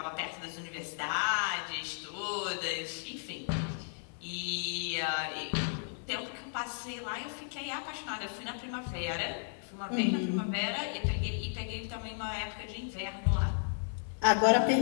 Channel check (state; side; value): silent; right; 55 dB below the other